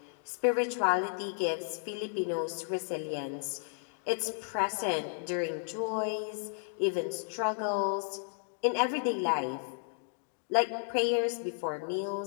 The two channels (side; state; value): right; silent; digital silence